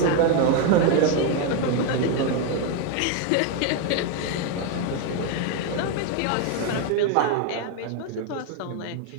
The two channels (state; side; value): different; both; correlation 0.01